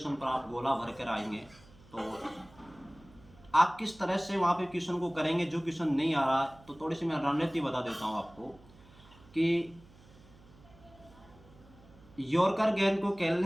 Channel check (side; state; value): right; noise; hum, 24 dB below the sound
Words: पर आप गोला भर कर आएंगे। तो आप किस तरह से वहाँ पे क्वेश्चन को करेंगे, जो क्वेश्चन नहीं आ रहा है, तो थोड़ी सी मैं रणनीति बता देता हूँ आपको। कि यॉर्कर गेंद को